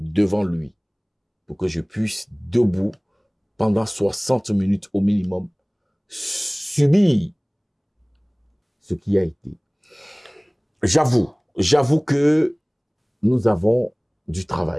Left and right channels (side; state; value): both; identical; correlation 1.00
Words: lui pour que je puisse, debout, pendant 60 minutes au minimum, subir ce qui a été. J'avoue que nous avons du